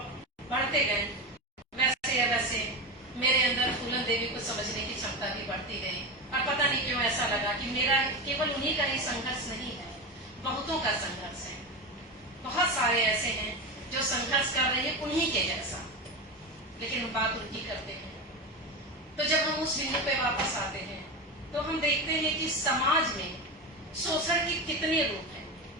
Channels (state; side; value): normal; both; correlation 0.20